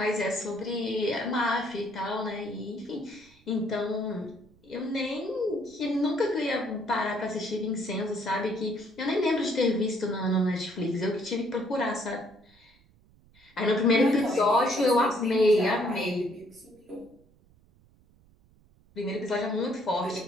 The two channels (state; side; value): noise; right; rumble, 30 dB below the sound